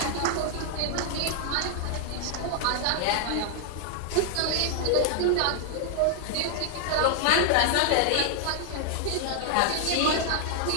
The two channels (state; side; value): different; both; correlation 0.00